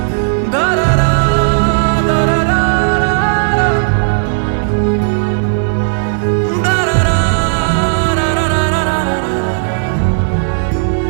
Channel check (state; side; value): silent; left; digital silence